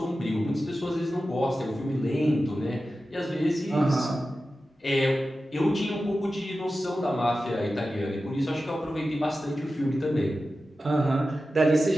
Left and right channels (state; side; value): normal; both; correlation 0.93